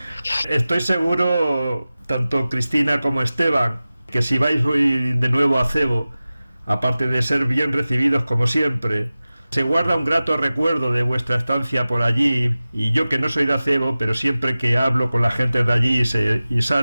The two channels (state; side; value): inverted; both; correlation -0.96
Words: Estoy seguro, tanto Cristina como Esteban, que si vais hoy de nuevo a Acebo, aparte de ser bien recibidos como siempre, se guarda un grato recuerdo de vuestra estancia por allí. Y yo, que no soy de Acebo, pero siempre que hablo con la gente de allí y